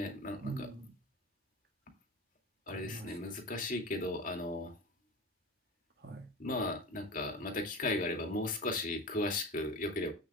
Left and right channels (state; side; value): normal; both; correlation 0.30